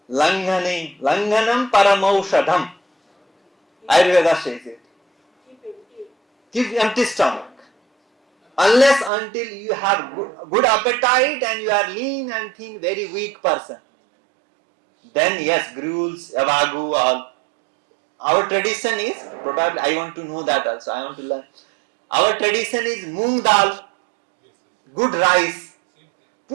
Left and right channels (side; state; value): left; drops out; at 9.1 s